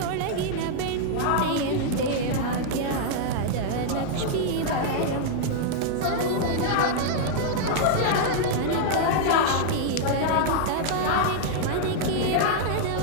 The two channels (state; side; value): different; both; correlation -0.01